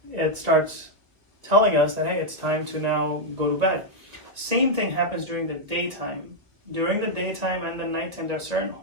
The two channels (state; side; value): late; left; 1.5 ms